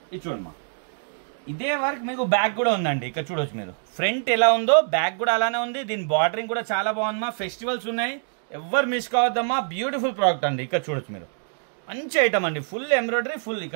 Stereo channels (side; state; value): left; silent; 59 dB below the other